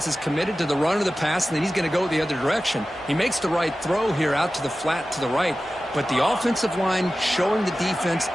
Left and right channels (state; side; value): normal; both; correlation 0.95